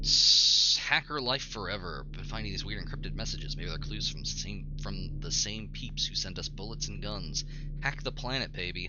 Hacker life forever. Been finding these weird encrypted messages. Maybe they're clues from the same peeps who sent us bullets and guns. Hack the planet, baby.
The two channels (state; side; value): identical; both; correlation 1.00